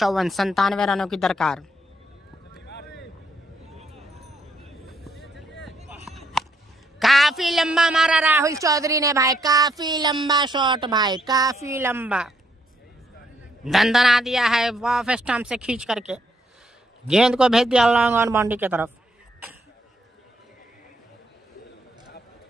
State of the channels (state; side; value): normal; both; correlation 0.73